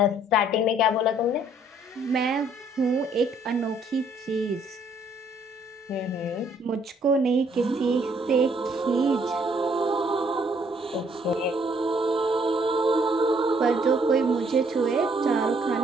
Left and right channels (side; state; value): both; normal; correlation 0.65